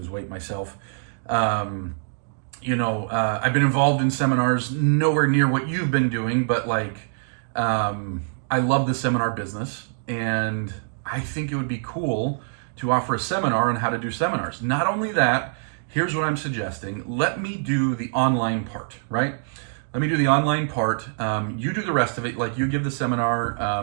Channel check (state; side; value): silent; left; digital silence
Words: weight myself. I've been involved in seminars, nowhere near what you've been doing, but I love the seminar business, and I think it would be cool to offer a seminar on how to do seminars. Not only that, here's what I'm suggesting. Let me do the online part, right? Let me do the online part. You do the rest of it. Like, you give the